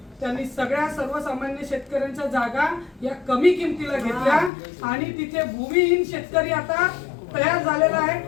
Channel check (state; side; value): drops out; right; at 4.5 s